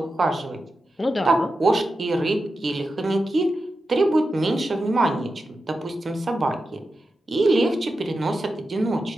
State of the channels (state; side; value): normal; both; correlation 0.90